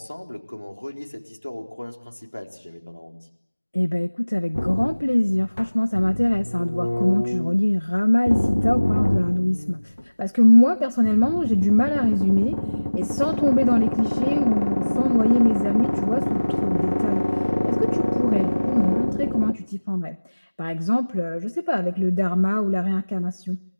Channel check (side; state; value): both; inverted; correlation -1.00